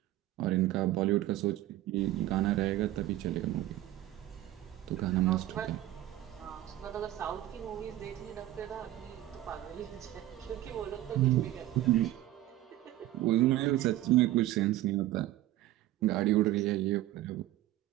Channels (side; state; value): left; quieter; 14.8 dB